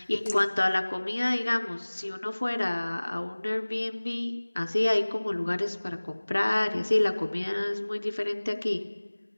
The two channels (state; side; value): inverted; both; correlation -1.00